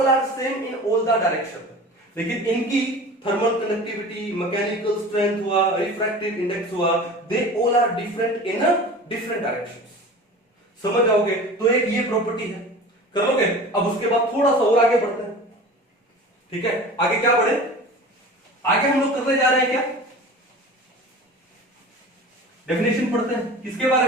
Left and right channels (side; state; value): both; normal; correlation 0.37